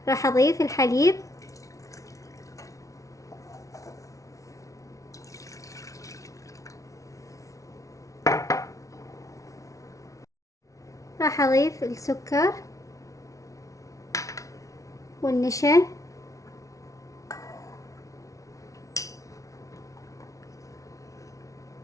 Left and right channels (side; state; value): right; late; 0.16 ms